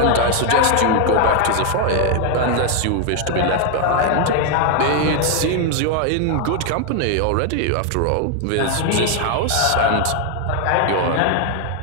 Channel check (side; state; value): both; different; correlation 0.01